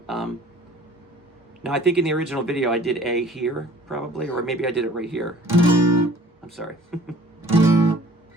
Now, I think in the original video I did A here, probably, or maybe I did it right here. I'm sorry.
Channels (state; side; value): normal; both; correlation 0.51